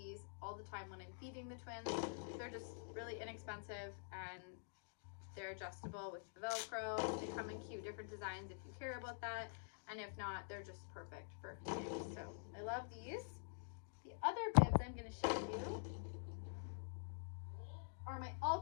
all the time when I'm feeding the twins. They're just really inexpensive and they're adjustable with the Velcro. They come in cute different designs if you care about that, and if not, they're just perfect for feeding. So I love these. The other bibs I'm going to show you are my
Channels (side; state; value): right; silent; digital silence